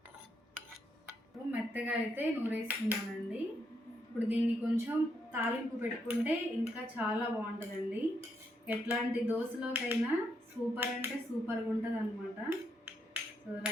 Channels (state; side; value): normal; both; correlation 0.78